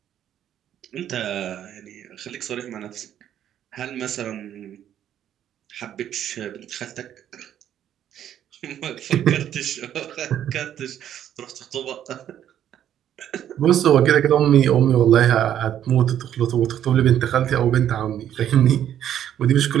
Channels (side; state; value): left; quieter; 10.5 dB